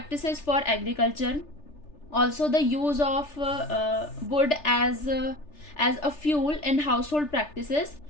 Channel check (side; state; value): right; late; 3.4 ms